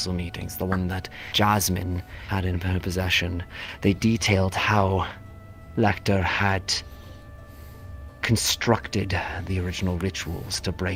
meetings, the one that Jasmine had in her possession, they detailed how Lecter had constructed the original rituals to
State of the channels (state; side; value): identical; both; correlation 1.00